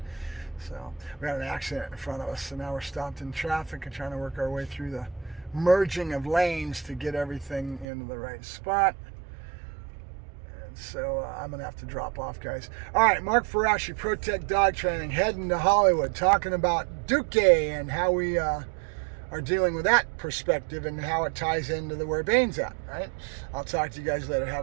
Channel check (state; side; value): drops out; left; at 7.9 s